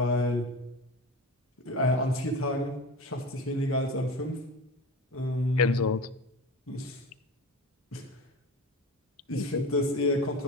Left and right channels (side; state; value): both; normal; correlation 0.30